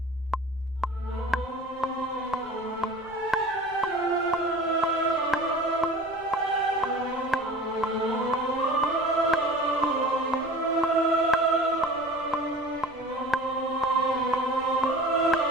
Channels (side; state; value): left; noise; rumble, 25 dB below the sound